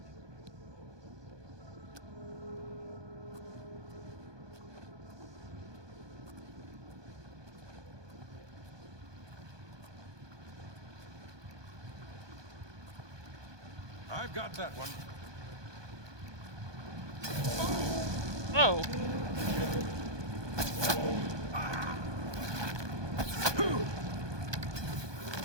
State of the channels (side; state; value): left; late; 1.2 ms